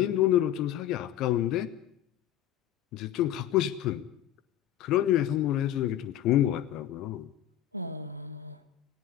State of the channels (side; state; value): right; quieter; 11.9 dB